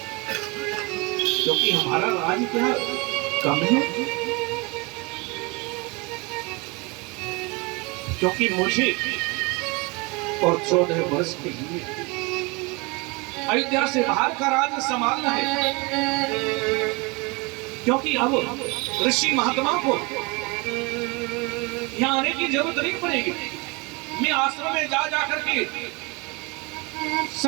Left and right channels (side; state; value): left; quieter; 27.6 dB